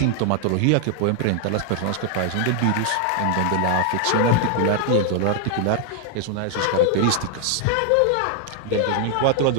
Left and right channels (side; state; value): both; different; correlation 0.00